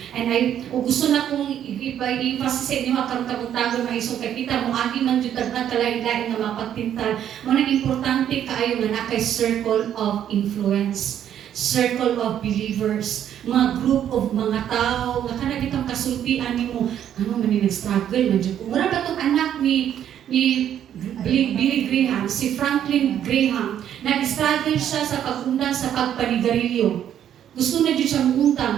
And gusto na kong i-emphasis sa inyo karon kabuntagon mga isong kay kita mo agi man jud na kalain-lain nga mapagtintal. Mo nang importante kaayo nga nakay circle of influence, circle of believers, mga group of mga tao nga kana kitang kasultian nimo ano man ni nag-struggle man jud. Mura ba tong anak ni Billy Graham, si Franklin Graham, nag-struggle siya sa pag-undang sa pagpanigarilyo. Gusto na dyan siyang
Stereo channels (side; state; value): left; quieter; 10.1 dB